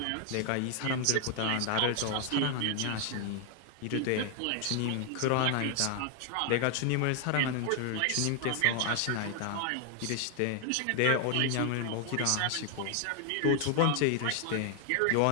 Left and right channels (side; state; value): both; different; correlation 0.00